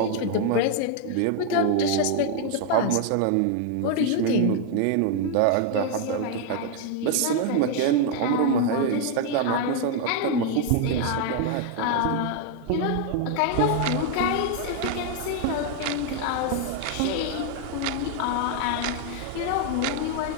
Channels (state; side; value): different; both; correlation 0.00